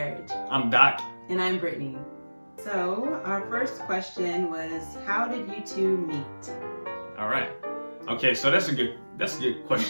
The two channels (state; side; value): inverted; both; correlation -1.00